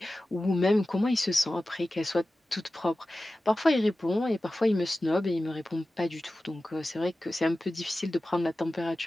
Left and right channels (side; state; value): both; normal; correlation 0.95